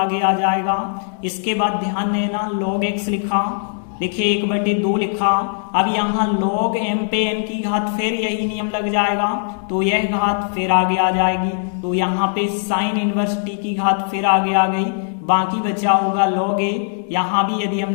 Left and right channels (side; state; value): right; silent; digital silence